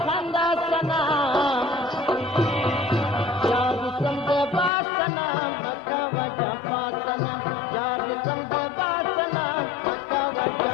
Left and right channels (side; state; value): right; drops out; at 4.7 s